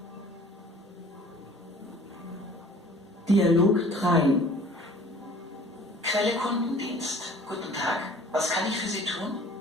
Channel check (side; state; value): both; normal; correlation 0.50